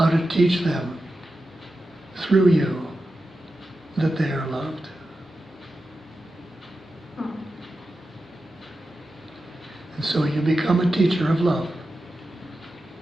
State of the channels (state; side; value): normal; both; correlation 0.91